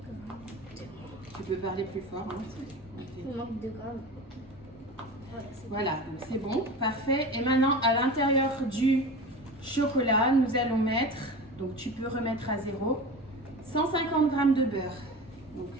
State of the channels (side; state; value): both; normal; correlation 0.32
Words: Tu peux parler plus fort. Hein? Il manque 2 grammes. Voilà, donc c'est bon, parfait. Et maintenant à l'intérieur du chocolat, nous allons mettre, donc tu peux remettre à 0, 150 g de beurre. Donc